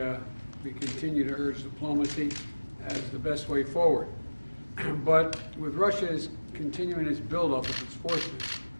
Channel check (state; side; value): inverted; both; correlation -1.00